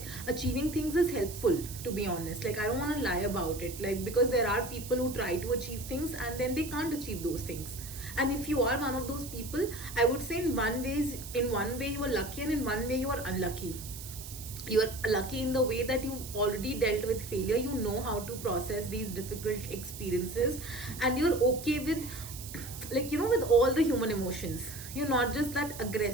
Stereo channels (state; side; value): noise; right; hiss, 12 dB below the sound